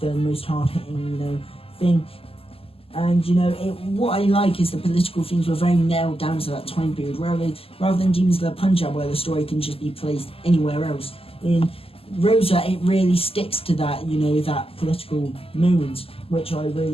most hard-hitting, thing. And, what I like is the political themes were very nailed down to that time period, rather than Demons of the Punjab, where the story can just be placed anywhere else. In Rosa, it really sticks to that, that political moment, which I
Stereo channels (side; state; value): right; late; 0.28 ms